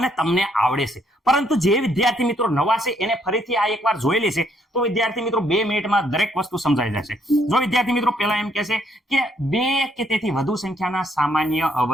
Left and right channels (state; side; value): normal; both; correlation 0.70